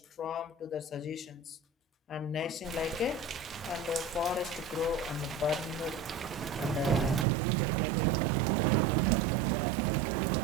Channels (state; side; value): drops out; left; at 7.2 s